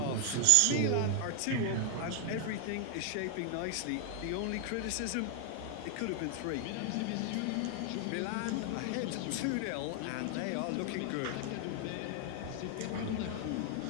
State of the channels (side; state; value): both; different; correlation 0.00